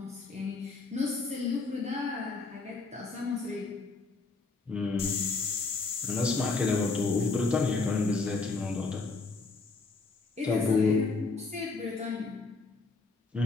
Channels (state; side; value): quieter; right; 3.9 dB